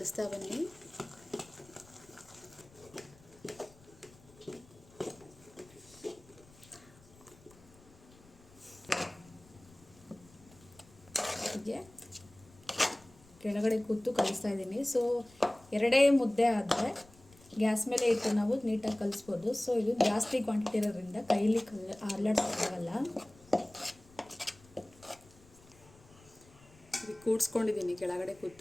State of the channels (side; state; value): left; noise; rumble, 25 dB below the sound